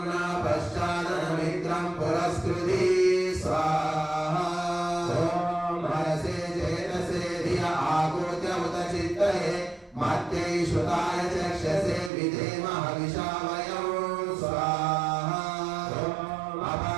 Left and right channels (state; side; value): drops out; left; at 12.1 s